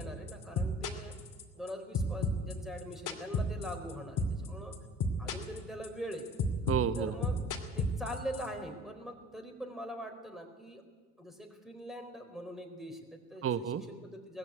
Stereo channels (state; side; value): normal; both; correlation 0.45